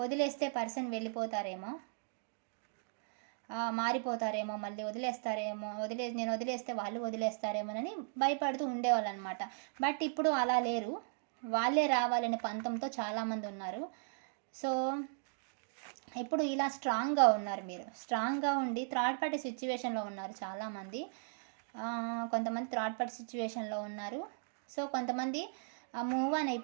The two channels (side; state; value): left; silent; digital silence